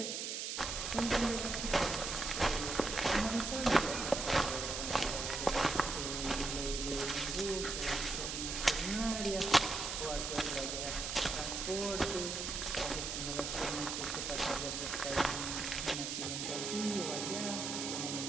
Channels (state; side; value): noise; right; hiss, 3 dB below the sound